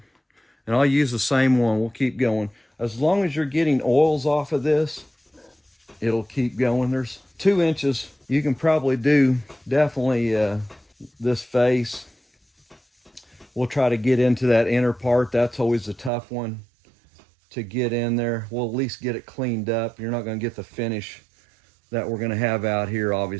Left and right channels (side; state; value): left; drops out; at 16.1 s